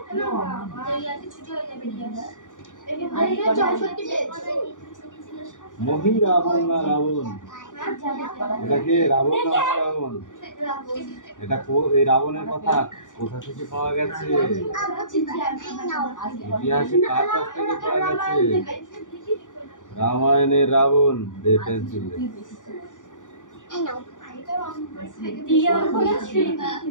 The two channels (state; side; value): late; right; 0.87 ms